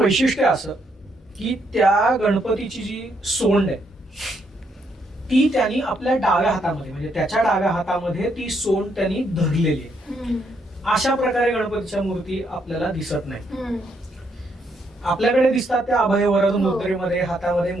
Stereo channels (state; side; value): normal; both; correlation 0.75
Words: वैशिष्ट्य असं की त्या गणपतीची जी सोंड आहे ती त्यांनी आपल्या डाव्या हातामध्ये, म्हणजे त्याच्या डाव्या हातामध्ये ती सोंड त्यांनी धरलेली आहे. अशा प्रकारे गणपतीच्या मूर्ती आपल्याला दिसत नाही. आपल्याकडे दिसतात त्या अभय वरद मुद्रेमध्ये हातामध्ये